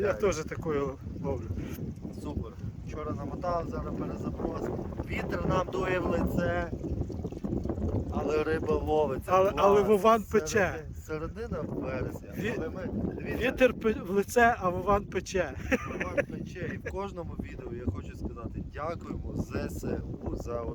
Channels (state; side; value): identical; both; correlation 1.00